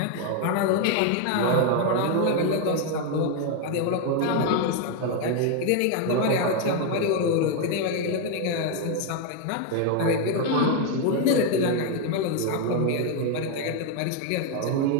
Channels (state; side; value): different; both; correlation 0.01